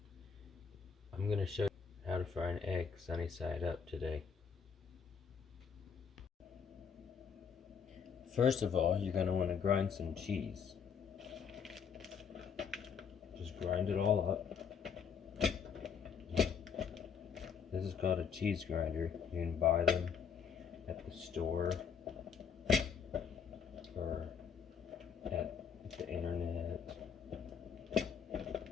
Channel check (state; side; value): quieter; right; 6.7 dB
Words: I'm going to show you how to fry an egg sunny side up today. First of all, you're going to want to grind some cheese. Just grind it all up. This is called a cheese grinder. You can buy them at the store or at the internet.